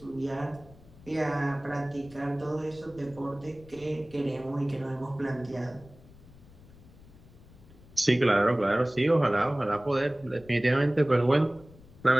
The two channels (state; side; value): noise; left; rumble, 23 dB below the sound